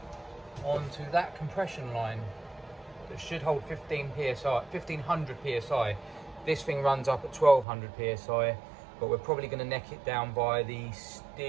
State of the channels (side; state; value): left; drops out; at 7.7 s